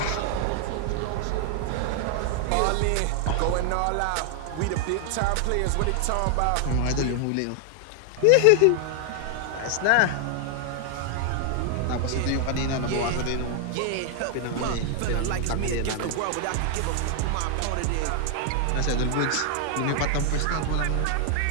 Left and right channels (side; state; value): both; different; correlation 0.00